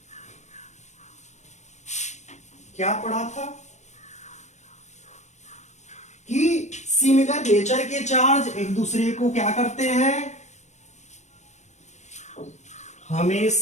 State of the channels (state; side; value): late; right; 0.34 ms